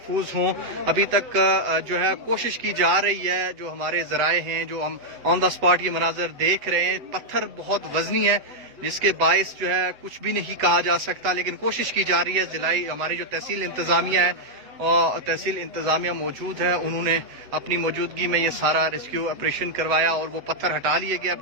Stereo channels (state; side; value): late; left; 7.9 ms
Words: हों। अभी तक जो है कोशिश की जा रही है, जो हमारे जराए हैं, जो हम ऑन द स्पॉट ये मनाजर देख रहे हैं, पत्थर बहुत वजनी है जिसके बायस जो है कुछ भी नहीं कहा जा सकता, लेकिन कोशिश की जा रही है। जिलाई हमारी जो तहसील इंतजामिया है और तहसील इंतजामिया मौजूद है, उन्होंने अपनी मौजूदगी में ये सारा रेस्क्यू ऑपरेशन करवाया और वो पत्थर हटा लिए गए। अब